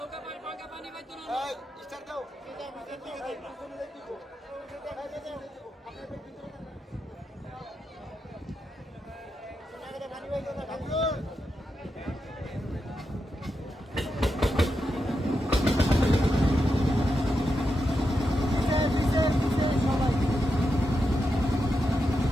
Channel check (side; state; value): both; normal; correlation 0.87